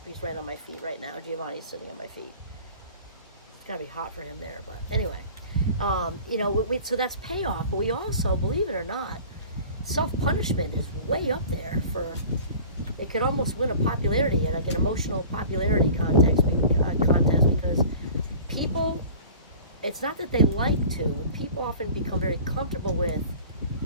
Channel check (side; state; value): both; inverted; correlation -0.43